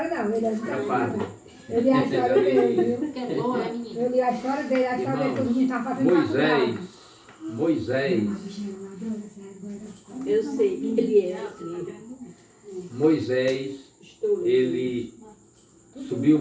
não, ele é é padre. Eu li a história dele, viu? Que é bom, é menino. Eu li a história dele, todo mundo tá fazendo Moisés, Eu sei que ele é assim. Moisés, ele subiu o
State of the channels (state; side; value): identical; both; correlation 1.00